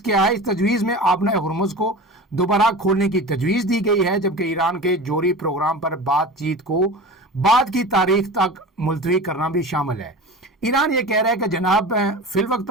کیا ہے؟ اس تجویز میں آبنہ ہرمز کو دوبارہ کھولنے کی تجویز دی گئی ہے، جبکہ ایران کے جوہری پروگرام پر بات چیت کو بعد کی تاریخ تک ملتوی کرنا بھی شامل ہے۔ ایران یہ کہہ رہا ہے کہ جناب فی الوقت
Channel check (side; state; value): both; normal; correlation 0.33